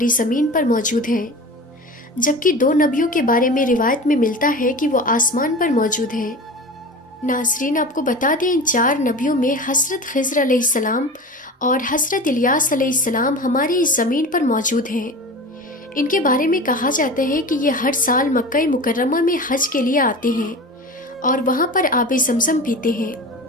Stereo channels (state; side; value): normal; both; correlation 0.33